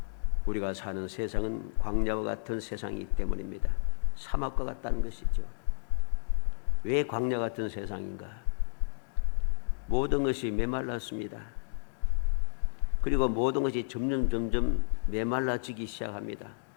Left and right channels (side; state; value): right; silent; digital silence